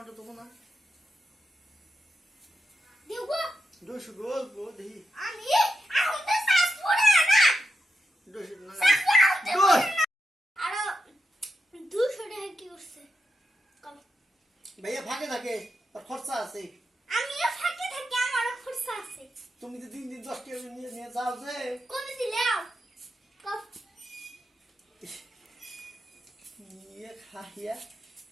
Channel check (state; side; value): normal; both; correlation 0.86